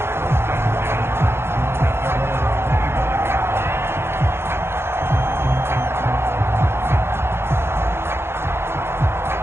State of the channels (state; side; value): late; left; 0.12 ms